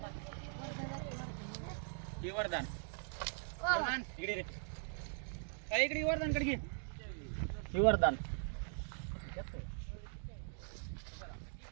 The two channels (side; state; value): left; silent; 50 dB below the other